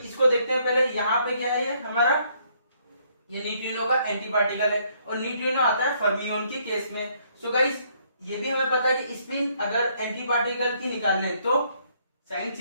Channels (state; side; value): inverted; both; correlation -0.68